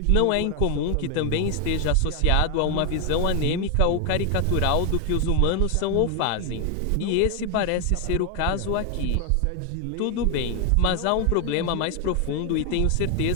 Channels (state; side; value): different; both; correlation 0.00